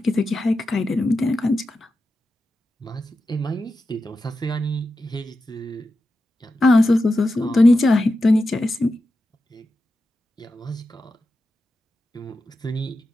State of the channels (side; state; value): both; normal; correlation 0.90